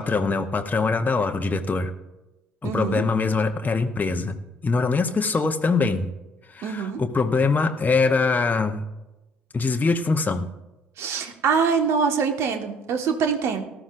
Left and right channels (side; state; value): both; normal; correlation 0.65